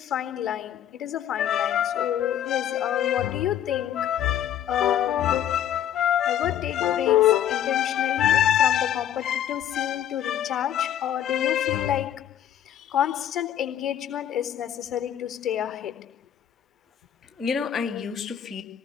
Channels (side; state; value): right; quieter; 10.5 dB